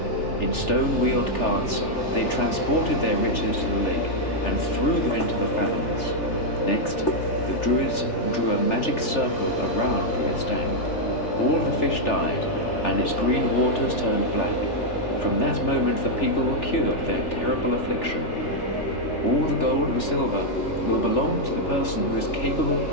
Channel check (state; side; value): late; right; 3.4 ms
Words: In stone-wheeled carts, they transported their riches to the lake and threw them into the fathoms. Next, the Druids drew a magic circle around the Estaing. All the fish died, and its green waters turned black. From that moment the people were cured of their terrible affliction. All the gold and silver will belong to the person who is capable